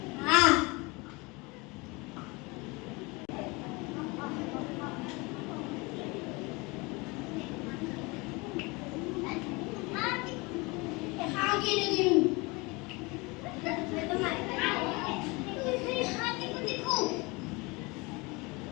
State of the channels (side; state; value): right; quieter; 26.0 dB